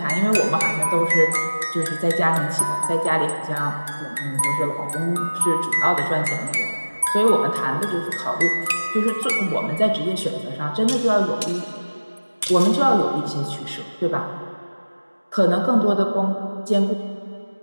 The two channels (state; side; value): inverted; both; correlation -1.00